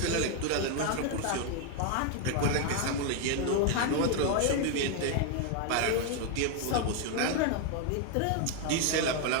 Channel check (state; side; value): different; both; correlation 0.01